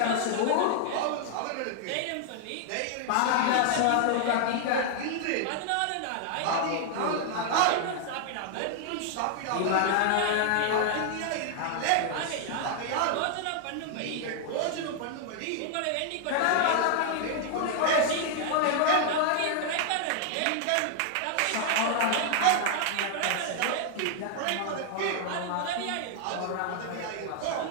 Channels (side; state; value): both; different; correlation 0.00